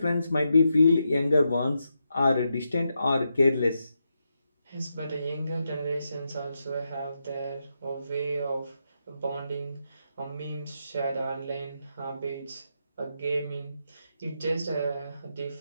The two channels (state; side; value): inverted; both; correlation -0.84